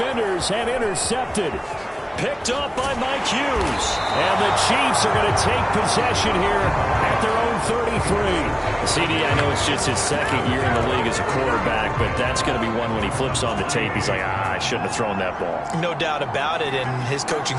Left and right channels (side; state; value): both; identical; correlation 1.00